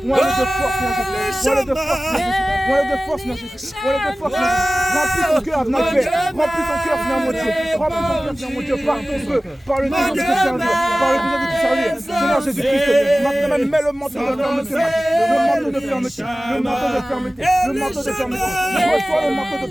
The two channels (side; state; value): both; normal; correlation 0.97